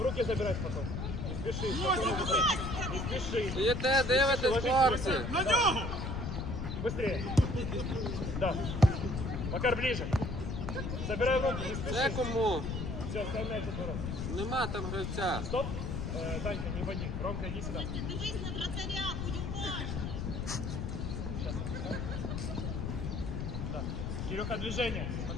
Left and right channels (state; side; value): noise; left; rumble, 3 dB below the sound